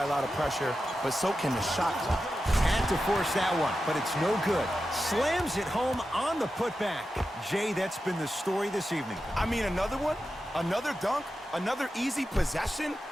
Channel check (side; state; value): both; normal; correlation 0.91